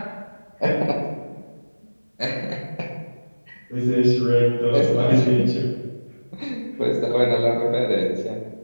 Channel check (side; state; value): both; inverted; correlation -1.00